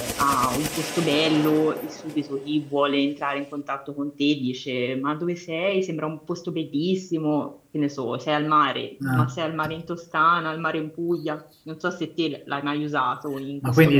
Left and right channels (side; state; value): both; identical; correlation 1.00